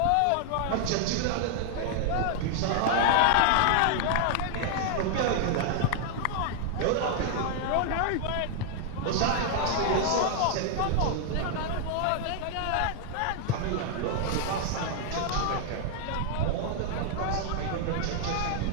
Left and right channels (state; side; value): different; both; correlation 0.00